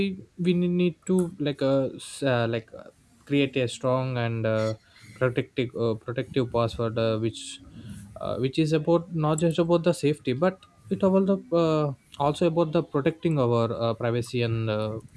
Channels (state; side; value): identical; both; correlation 1.00